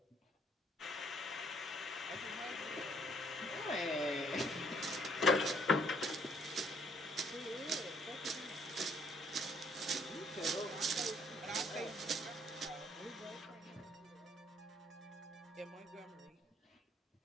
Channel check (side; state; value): both; normal; correlation 0.65